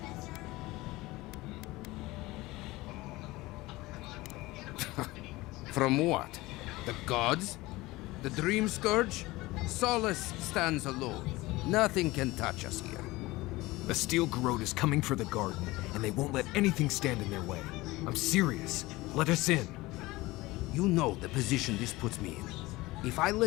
From what? The gods? The Dream Scourge? Solace stands alone. Nothing can touch us here. The steel garrote is coming for the garden, and they won't let anything stand in their way. I'm serious. Let us in. You know the position this puts me in. If I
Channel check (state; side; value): quieter; right; 20.0 dB